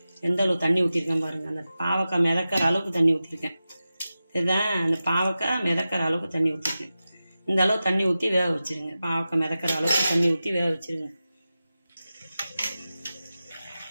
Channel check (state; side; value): inverted; both; correlation -0.94